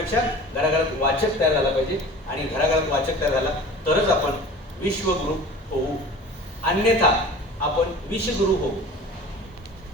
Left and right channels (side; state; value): both; normal; correlation 0.41